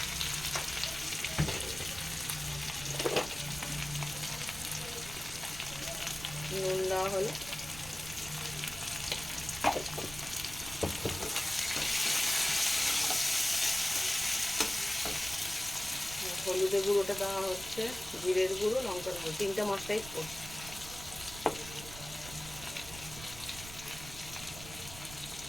নুন দেওয়া হলো, হলুদের গুঁড়োটা দেওয়া হচ্ছে, জিরের গুঁড়ো, লঙ্কার গুঁড়ো, 3টে মশলাই করছে।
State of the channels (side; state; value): right; noise; rumble, 13 dB below the sound